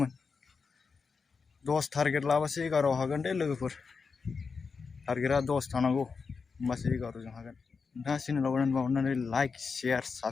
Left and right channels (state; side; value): quieter; right; 5.1 dB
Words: 10 टारगेट लाबासो 11 हागोन दे लोगोफोर टारगेटआ 10 थानांगौ होमबासो 11 जों हागोन नोंथाङा चेनेलाव गोदानबा अननानै लाइक शेयार